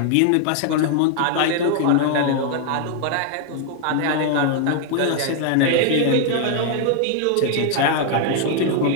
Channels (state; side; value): different; both; correlation 0.00